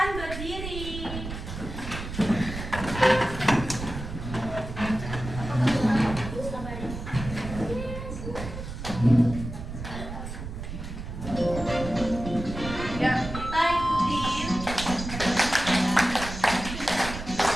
berdiri. Ya, kita ikutin.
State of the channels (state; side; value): noise; right; rumble, 8 dB below the sound